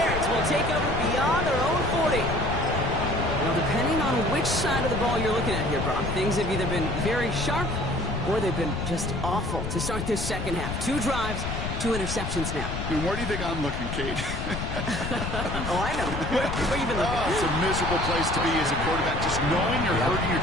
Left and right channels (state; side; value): noise; left; rumble, 4 dB below the sound